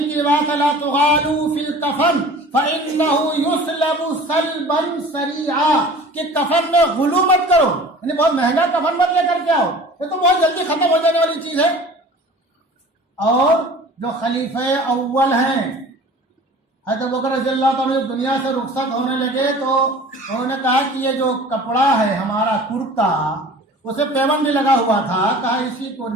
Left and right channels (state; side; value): normal; both; correlation 0.43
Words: کی روایت ہے، لا تغالوا فی الکفن فإنہ یسلب سلبا سریعا، کہ کفن میں غلو مت کرو، یعنی بہت مہنگا کفن مت لے کر کے آؤ، یہ تو بہت جلدی ختم ہو جانے والی چیز ہے۔ اور جو خلیفہ اول ہیں حضرت ابوبکر رضی اللہ عنہ دنیا سے رخصت ہونے لگے تو انہوں نے کہا کہ یہ جو کپڑا ہے ہمارا کرتا، اسے پیون بھی لگا ہوا تھا، کہا اسی کو